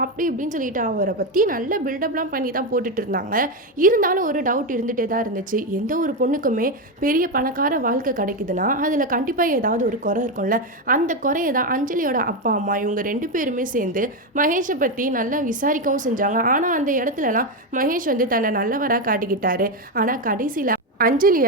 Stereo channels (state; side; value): normal; both; correlation 0.10